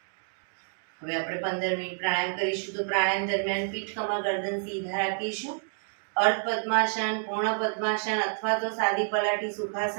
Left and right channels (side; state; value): left; silent; 59 dB below the other